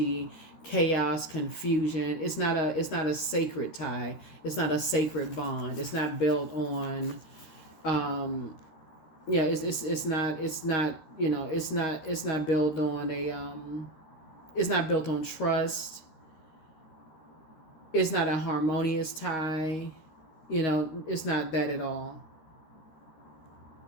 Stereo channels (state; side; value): late; right; 13 ms